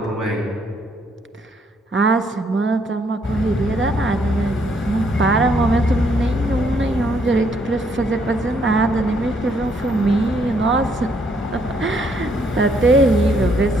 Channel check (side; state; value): both; normal; correlation 0.70